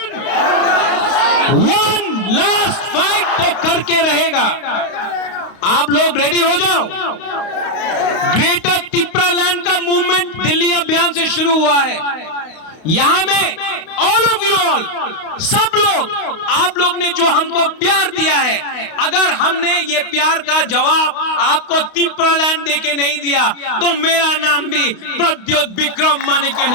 वन लास्ट फाइट तो करके रहेगा। आप लोग रेडी हो जाओ। ग्रेटर तिप्रालैंड का मूवमेंट दिल्ली अभियान से शुरू हुआ है। यहां में ऑल ऑफ यू ऑल, सब लोग, आप लोग ने जो हमको प्यार दिया है, अगर हमने ये प्यार का जवाब आपको तिप्रालैंड देके नहीं दिया तो मेरा नाम भी प्रद्योत विक्रम मानिके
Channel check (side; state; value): right; late; 32 ms